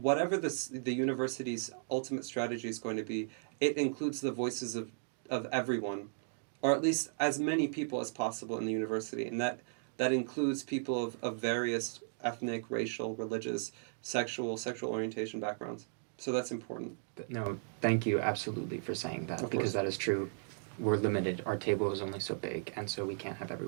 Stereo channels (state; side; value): silent; left; digital silence